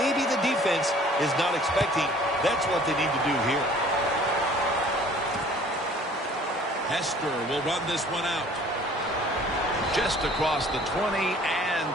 the defense is not expecting? That's what they need to do here. Hester will run this one out. Just across the 20 and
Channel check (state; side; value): normal; both; correlation 0.52